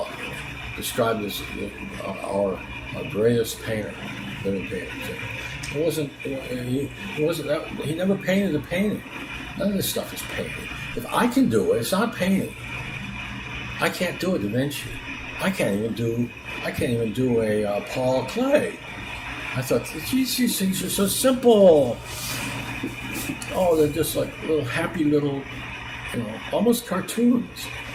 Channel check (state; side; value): identical; both; correlation 1.00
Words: described as our greatest painter, living painter. He wasn't that. He never painted a painting. None of this stuff is painting. If I can do it, it's not painting. I can't do it, Da Vinci. I can't even do a Paul Klee. I thought, geez, these things are so simple. Oh, they're just like little happy little, almost cartoons.